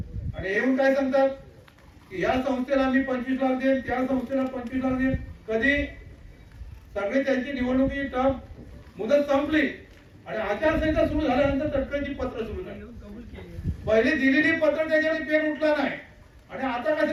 आणि येऊन काय सांगतात की या संस्थेला आम्ही 25 लाख देईन, त्या संस्थेला 25 लाख देईन. कधी सगळे त्यांची निवडणुकीची टर्म मुदत संपली आणि आचारसंहिता सुरू झाल्यानंतर तटकरेची पत्र सुरू झाली. पहिली दिलेली पत्र त्याच्याने पेन उठला नाही आणि आता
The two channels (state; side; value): identical; both; correlation 1.00